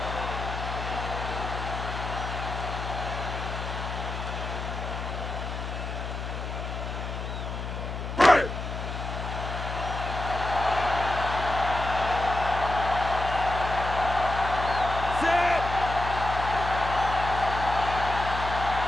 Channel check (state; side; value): noise; left; hum, 5 dB below the sound